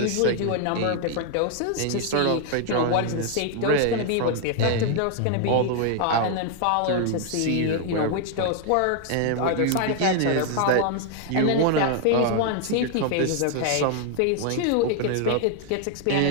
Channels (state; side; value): different; both; correlation 0.00